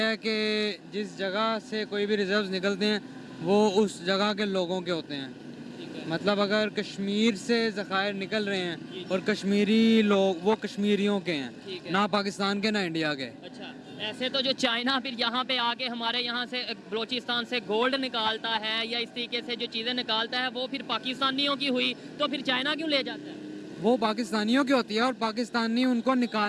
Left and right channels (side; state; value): both; identical; correlation 1.00